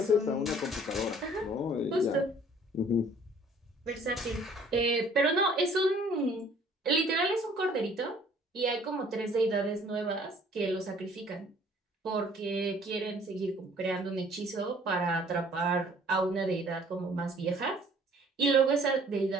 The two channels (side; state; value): both; normal; correlation 0.56